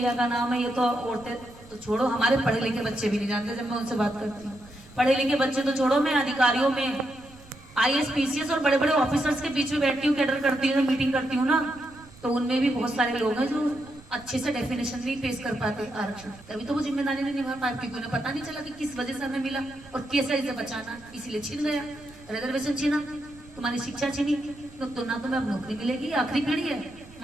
का नाम है, ये तो औरतें तो छोड़ो, हमारे पढ़े लिखे बच्चे भी नहीं जानते। जब मैं उनसे बात करती हूँ, पढ़े लिखे बच्चे तो छोड़ो, मैं अधिकारियों में IAS PCS और बड़े बड़े ऑफिसर्स के बीच में बैठती हूँ, कैडर करती हूँ, मीटिंग करती हूँ ना, तो उनमें भी बहुत सारे लोग हैं जो अच्छे से डेफिनेशन नहीं पेश कर पाते आरक्षण। तभी तो वो जिम्मेदारी नहीं निभा पाए, क्योंकि उन्हें पता नहीं चला कि किस वजह से हमें मिला और कैसे इसे बचाना, इसीलिए छीन गया। रिजर्वेशन छीना, तुम्हारी शिक्षा छीनी, तो ना तुम्हें अब नौकरी मिलेगी। आखिरी पीढ़ी है,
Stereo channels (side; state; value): right; noise; rumble, 22 dB below the sound